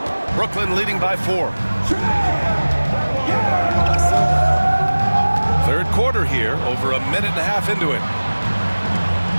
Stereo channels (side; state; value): both; inverted; correlation -1.00